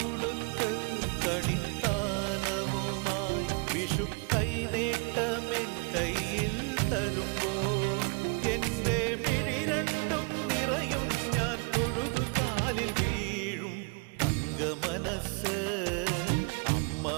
കണിത്താലവുമായി വിഷു കൈനേട്ടമെൻ കയ്യിൽ തരുമ്പോൾ എന്റെ മിഴി രണ്ടും നിറയും ഞാൻ തൊഴുതു കാലിൽ വീഴും തങ്ക മനസ്സ് അമ്മ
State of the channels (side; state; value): left; quieter; 34.0 dB